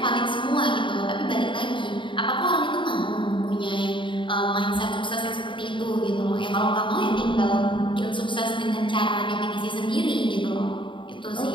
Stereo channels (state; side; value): late; right; 0.24 ms